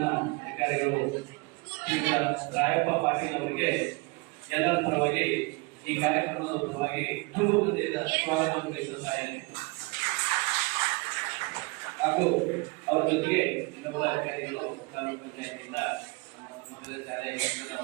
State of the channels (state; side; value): quieter; left; 27.4 dB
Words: ಅಧಿಕಾರಿಗಳು ರಾಯಪ್ಪ ಪಾಟೀಲ್ ಅವರಿಗೆ ಎಲ್ಲರ ಪರವಾಗಿ ಈ ಕಾರ್ಯಕ್ರಮದ ಪರವಾಗಿ ತುಂಬ ಹೃದಯದ ಸ್ವಾಗತವನ್ನು ಬಯಸುತ್ತಾ ಇದ್ದೇನೆ. ಹಾಗೂ ಅವರ ಜೊತೆಗೆ ಇನ್ನೊಬ್ಬ ಅಧಿಕಾರಿಗಳು ಗ್ರಾಮ ಪಂಚಾಯತಿಯಿಂದ ಮೊದಲ ಶಾಲೆ